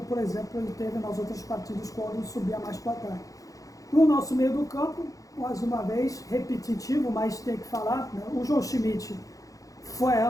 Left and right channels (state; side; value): late; right; 0.17 ms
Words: por exemplo, ele teve nas outras partidas quando subia mais para cá. No nosso meio do campo, mais uma vez, repetitivo, mas tem que falar, né? O João Schmidt foi a